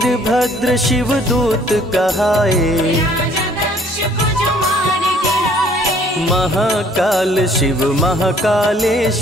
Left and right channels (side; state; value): both; normal; correlation 0.59